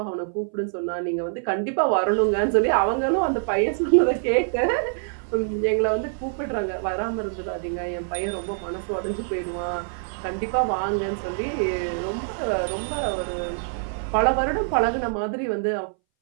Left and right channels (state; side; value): silent; left; 61 dB below the other